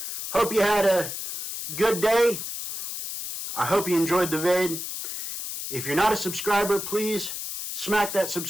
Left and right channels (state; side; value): noise; left; hiss, 6 dB below the sound